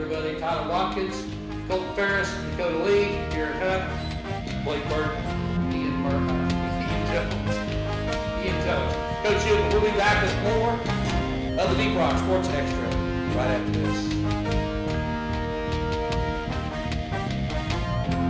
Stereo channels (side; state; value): both; identical; correlation 1.00